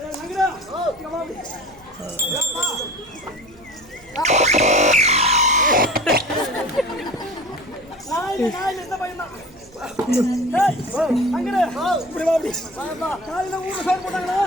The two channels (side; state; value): right; noise; hum, 26 dB below the sound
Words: இந்த பையன் தான். காலையில ஊர்ல சோறு போட்டாங்களா?